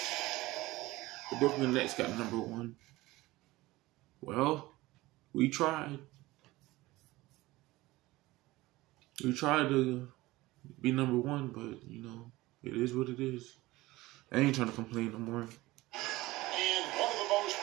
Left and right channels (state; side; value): quieter; left; 19.2 dB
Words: The Brooklyn Nets got number 1. Well, we tried. We tried to be number 1, but, you know, it is what it is. I ain't trying to complain no more. And one of the most